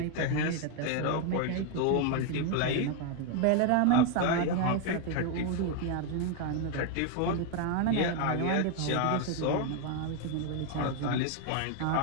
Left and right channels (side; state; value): both; different; correlation 0.01